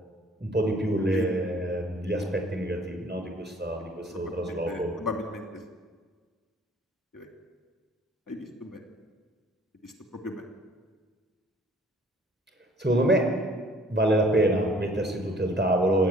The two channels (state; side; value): normal; both; correlation 0.56